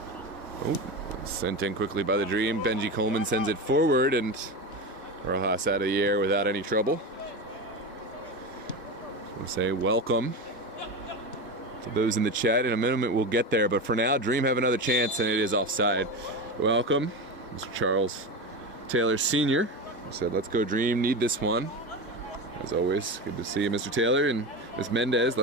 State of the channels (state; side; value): normal; both; correlation 0.21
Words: Oh, sent in quickly by the Dream. Benji Coleman sends it forward, and Rojas out of the air without any trouble. We'll say welcome to those in the chat. In a minute we'll get there, but for now, Dream have another chance, and it is offside. Welcome, Mr. Charles Taylor Sr. Said, let's go Dream, need this one. As always, good to see you, Mr. Taylor. And Ms. Mendez,